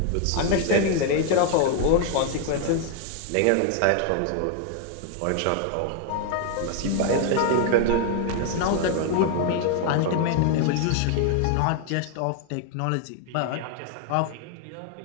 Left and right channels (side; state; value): both; different; correlation 0.00